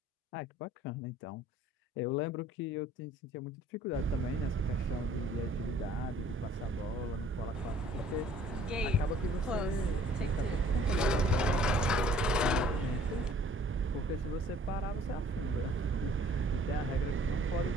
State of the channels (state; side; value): normal; both; correlation 0.55